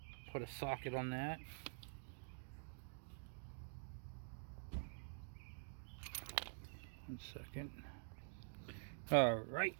put a socket on that. One second. Alright,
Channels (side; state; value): left; silent; digital silence